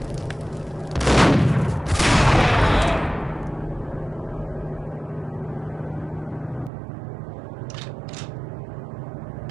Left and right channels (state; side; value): drops out; left; at 6.7 s